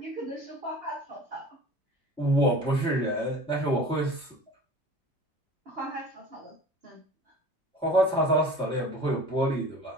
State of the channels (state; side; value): normal; both; correlation 0.41